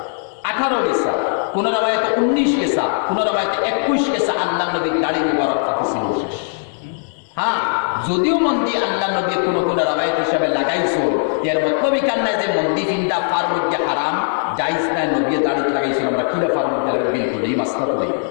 18 গেছে কোন রাবায়াতে 19 গেছে কোন রাবায়াতে 21 গেছে আল্লাহ নবীর দাড়ি মুবারক থাকিছিল শেষ হ্যাঁ যদিও মন্দির আল্লাহ নবী কোন রাবায়াত হিসাবে লাগাইছো এর মতলব কান নাই যে মন্দির ফিন্দা ফার মধ্যে হারাম জায়েজ নাই নবী দাড়ি লাগাইছিল আমরা কিলা ফার মধ্যে বিলকুল এই মাসলা তো নাই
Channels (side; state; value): right; silent; digital silence